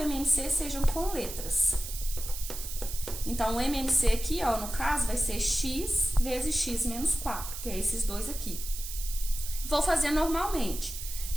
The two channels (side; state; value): right; noise; hiss, 8 dB below the sound